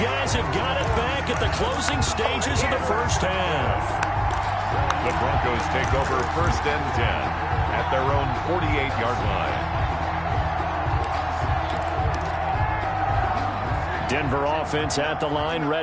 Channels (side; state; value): both; identical; correlation 1.00